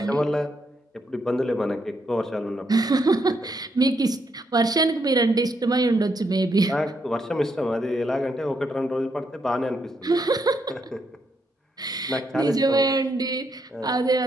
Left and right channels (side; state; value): both; normal; correlation 0.78